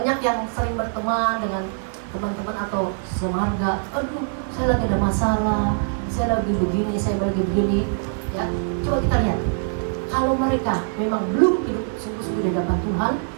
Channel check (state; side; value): silent; left; 62 dB below the other